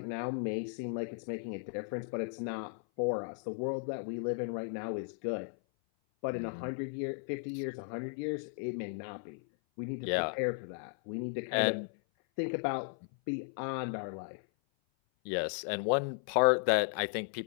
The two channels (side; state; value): right; silent; 54 dB below the other